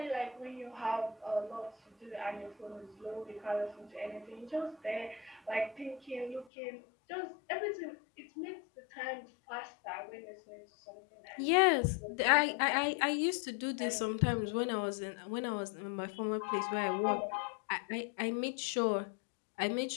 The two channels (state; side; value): drops out; right; at 6.5 s